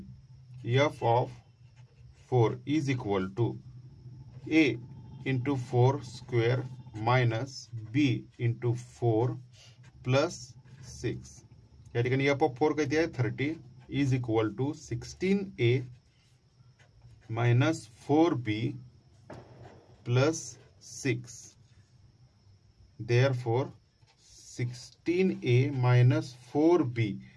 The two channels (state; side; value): identical; both; correlation 1.00